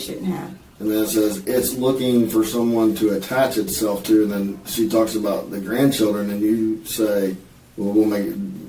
have. And then it says it's looking for someone to attach itself to, and then she talks about the grandchildren, and you say, well,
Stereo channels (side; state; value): both; identical; correlation 1.00